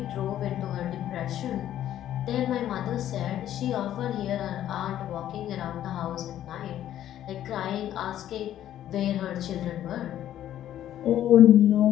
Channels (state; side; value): quieter; right; 11.8 dB